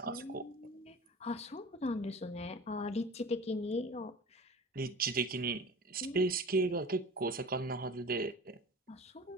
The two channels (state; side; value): normal; both; correlation 0.37